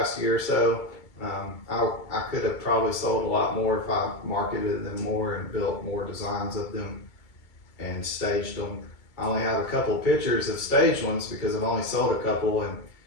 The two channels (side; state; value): right; late; 2.3 ms